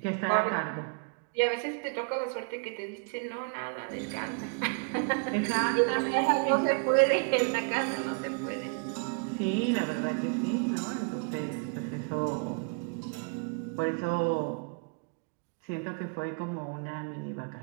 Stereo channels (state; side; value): quieter; left; 38.4 dB